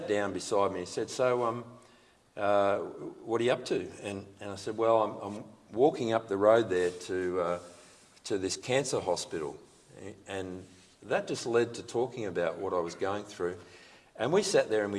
down beside me. He said, "So, what are you up to?" And I said, "Well, I'm walking up the road there to this cancer hospital," and that just led to talking about what I was going through. And we sat there and we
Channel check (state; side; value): identical; both; correlation 1.00